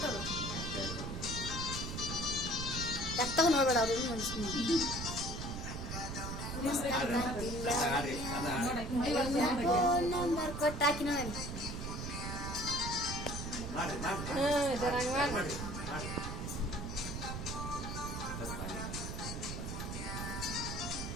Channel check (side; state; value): right; noise; rumble, 5 dB below the sound